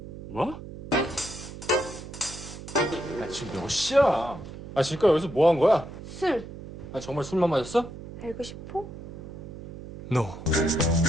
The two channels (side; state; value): right; noise; hum, 12 dB below the sound